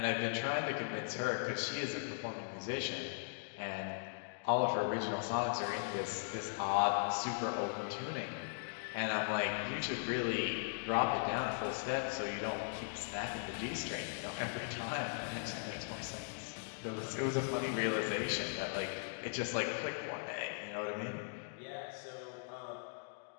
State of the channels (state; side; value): silent; right; digital silence